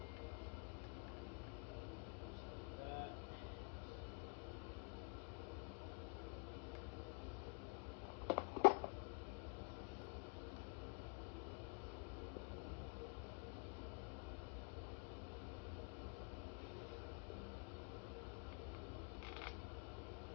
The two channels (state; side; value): quieter; right; 36.5 dB